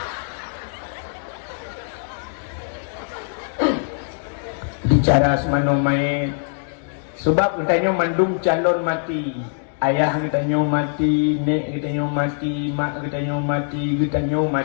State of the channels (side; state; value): right; silent; digital silence